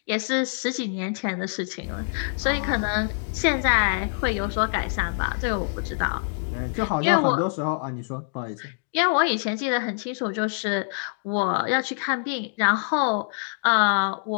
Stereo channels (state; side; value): silent; right; digital silence